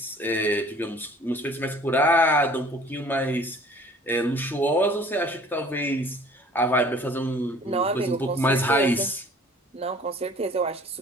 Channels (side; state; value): both; normal; correlation 0.51